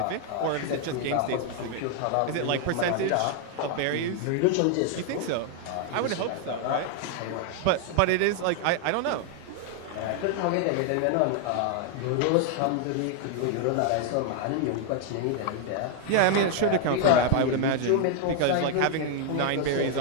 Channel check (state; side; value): different; both; correlation 0.00